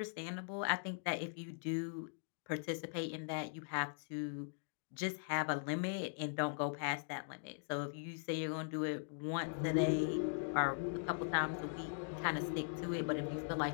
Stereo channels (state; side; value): silent; right; digital silence